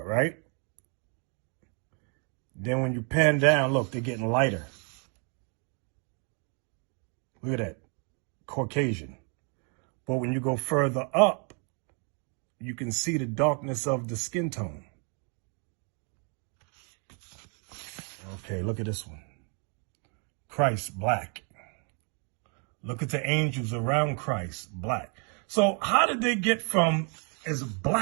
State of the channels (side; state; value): left; quieter; 38.3 dB